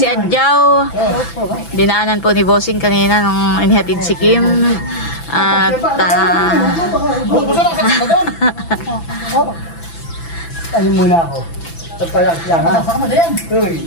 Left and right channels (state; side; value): late; right; 6.0 ms